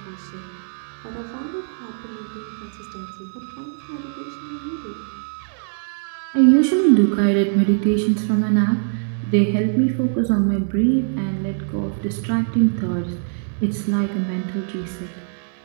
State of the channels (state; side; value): silent; left; digital silence